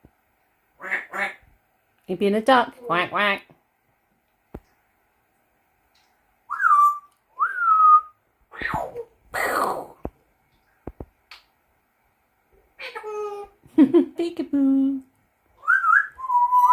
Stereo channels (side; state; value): both; identical; correlation 1.00